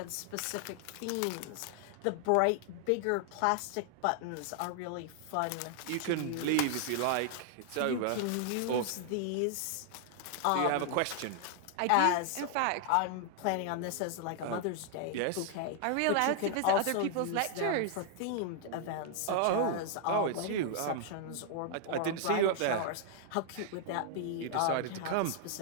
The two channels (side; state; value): both; different; correlation 0.00